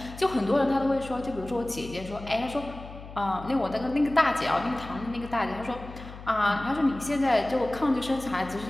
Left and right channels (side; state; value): left; noise; hum, 14 dB below the sound